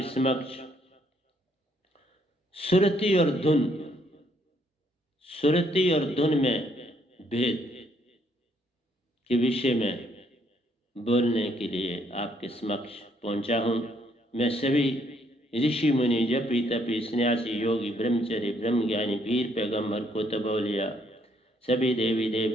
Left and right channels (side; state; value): both; normal; correlation 0.69